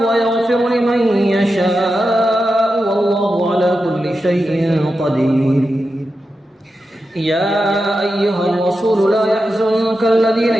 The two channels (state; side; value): normal; both; correlation 0.90